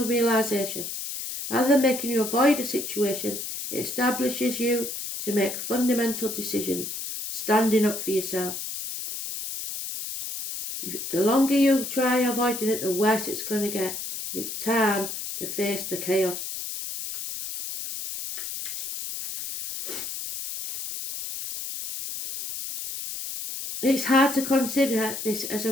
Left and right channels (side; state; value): left; noise; hiss, 6 dB below the sound